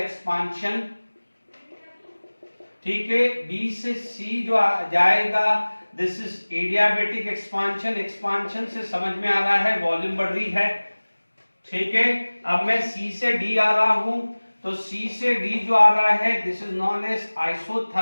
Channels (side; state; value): both; inverted; correlation -1.00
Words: ठीक है। B से C जो जाएगा दिस इज एडियाबैटिक एक्सपांशन से समझ में आ रहा है वॉल्यूम बढ़ रही है, ठीक है। अब मैं C से D आ रहा हूं तो C से D जो आ रहा है this is known as